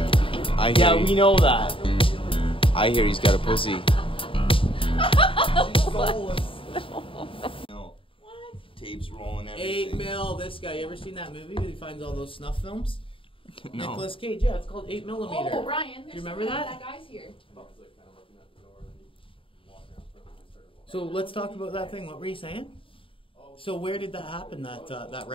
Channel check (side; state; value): right; late; 0.26 ms